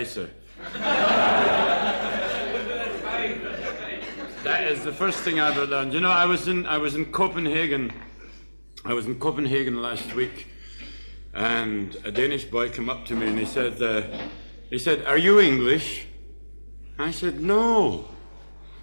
That is the first thing I ever learned. You know, I was in Copenhagen. I was in Copenhagen last week, and a Danish boy came up to me and he said, "Are you English?" I said, "No."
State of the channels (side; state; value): both; inverted; correlation -1.00